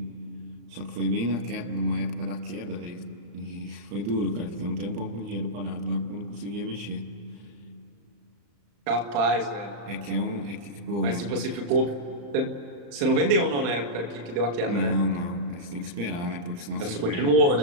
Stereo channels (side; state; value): left; late; 35 ms